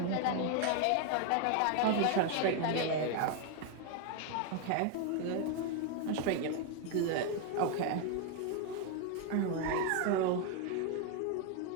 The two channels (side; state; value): both; different; correlation 0.01